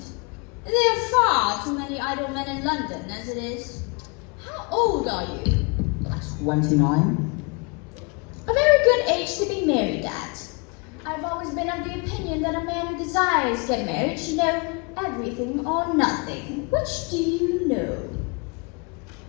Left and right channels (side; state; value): right; quieter; 32.3 dB